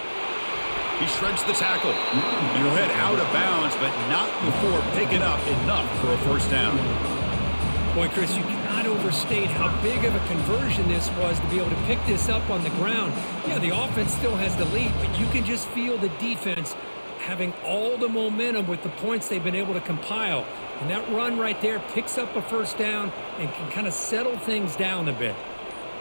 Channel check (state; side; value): inverted; both; correlation -1.00